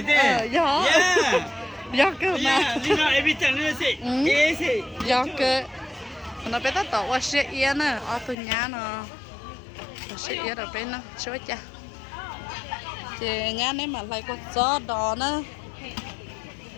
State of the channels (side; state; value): right; drops out; at 8.3 s